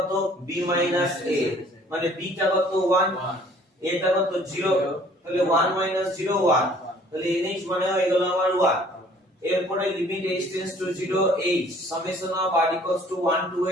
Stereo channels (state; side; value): normal; both; correlation 0.55